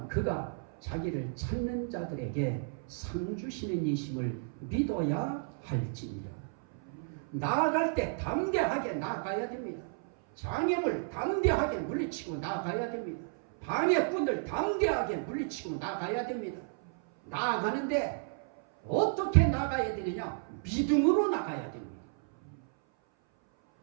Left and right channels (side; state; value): left; silent; 56 dB below the other